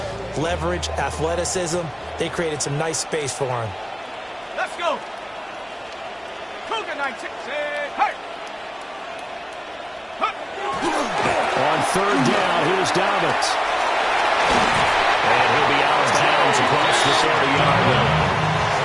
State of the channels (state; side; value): identical; both; correlation 1.00